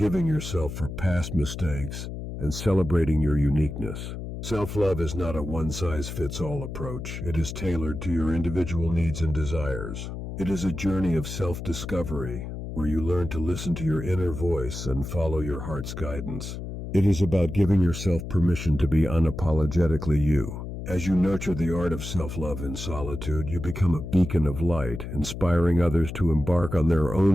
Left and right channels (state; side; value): noise; left; hum, 8 dB below the sound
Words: yourself for past mistakes, and celebrating your uniqueness. Self-love is not a one-size-fits-all approach. It is tailored to your individual needs and desires. It is a journey of self-discovery, where you learn to listen to your inner voice and follow your heart's guidance. It is about giving yourself permission to be unapologetically you. As you nurture the art of self-love in solitude, you become a beacon of light, inspiring others to embark on their